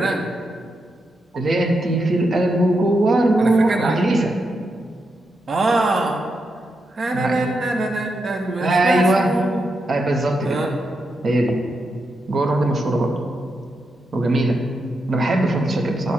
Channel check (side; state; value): both; normal; correlation 0.85